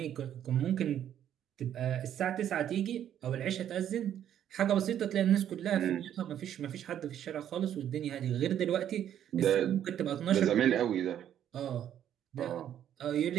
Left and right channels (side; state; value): left; quieter; 10.4 dB